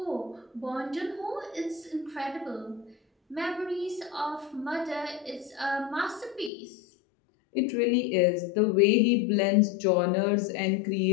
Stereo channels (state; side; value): drops out; right; at 6.5 s